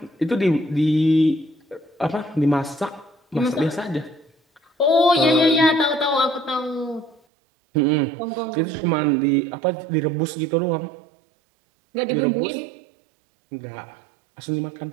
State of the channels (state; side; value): drops out; left; at 7.2 s